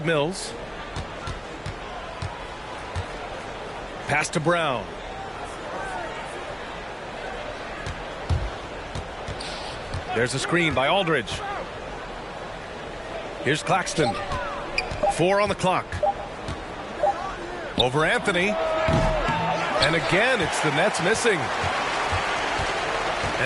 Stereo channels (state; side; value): identical; both; correlation 1.00